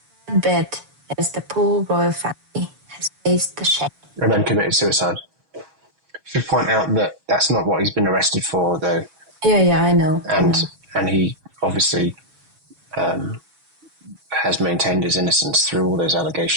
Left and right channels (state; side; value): late; left; 7.4 ms